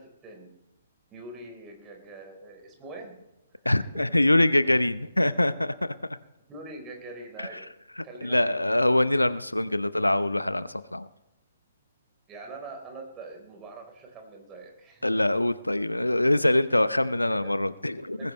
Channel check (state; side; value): inverted; both; correlation -0.97